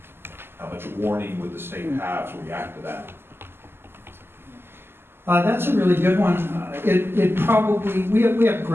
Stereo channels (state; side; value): late; left; 0.11 ms